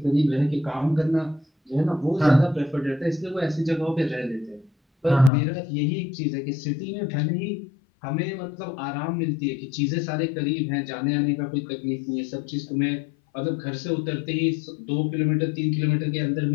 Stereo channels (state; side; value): drops out; right; at 5.3 s